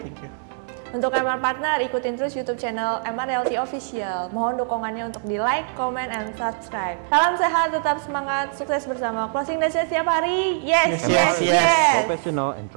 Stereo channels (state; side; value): silent; left; 63 dB below the other